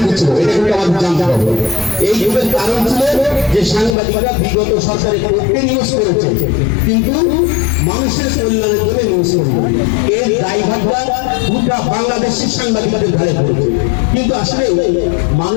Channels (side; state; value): right; drops out; at 4.0 s